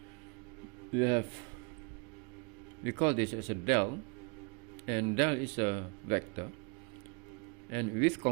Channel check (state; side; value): quieter; left; 34.8 dB